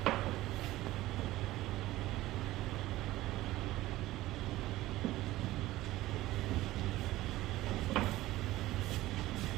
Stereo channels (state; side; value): quieter; left; 16.7 dB